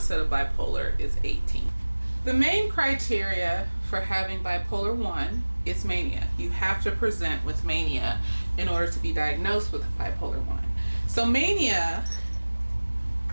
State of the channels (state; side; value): inverted; both; correlation -1.00